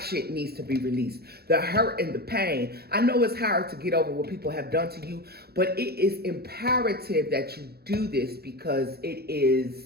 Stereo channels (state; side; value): late; left; 0.46 ms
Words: needs to be released. The hurt and the pain. I know it's hard to get over what people have done to you, but it is imperative that you do this because it